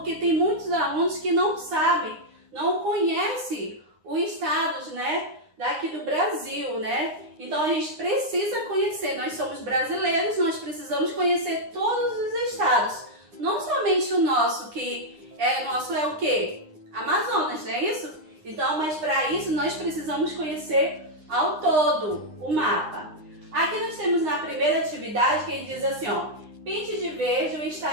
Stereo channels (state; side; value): late; left; 9.7 ms